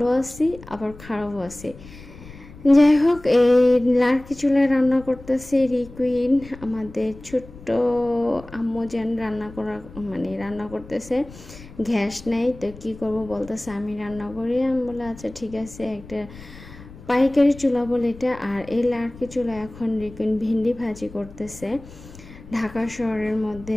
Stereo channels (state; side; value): noise; left; rumble, 18 dB below the sound